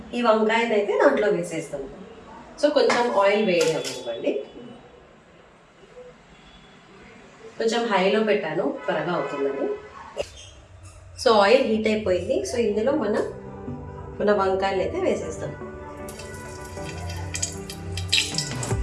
ఈ వంకాయని అయితే దాంట్లో వేసేస్తాం. సో కొంచెం ఆయిల్ వేడి అవ్వండి. కొంచెం హైలో పెట్టాను, త్వరగా అవుతుందని. సో ఆయిల్ హీట్ అయిపోయింది. సో ఇందులో మన వంకాయలు అయితే వేసేస్తాం.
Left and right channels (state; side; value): identical; both; correlation 1.00